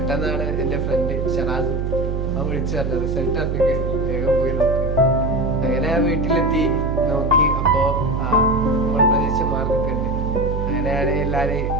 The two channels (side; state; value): right; noise; hum, 1 dB below the sound